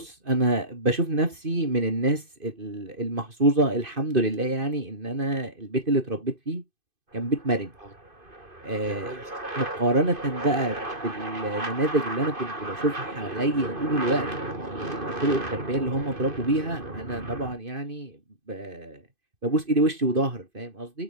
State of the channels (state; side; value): late; left; 2.5 ms